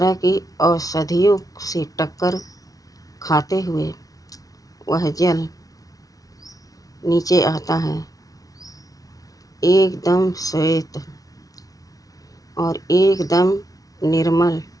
की औषधियों से टक्कर खाते हुए वह जल नीचे आता है, एकदम श्वेत और एकदम निर्मल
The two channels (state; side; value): late; right; 0.18 ms